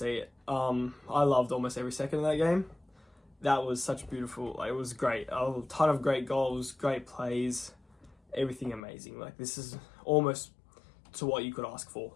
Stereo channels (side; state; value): right; drops out; at 8.8 s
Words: it. I loved almost every second of that game. That was such beautiful. It was great. A ton of great goals, great plays, everything amazing. This is almost to what you could ask for.